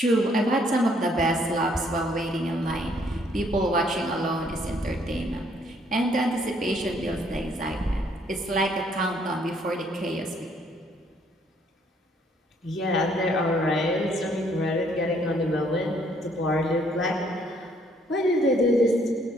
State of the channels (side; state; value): both; normal; correlation 0.66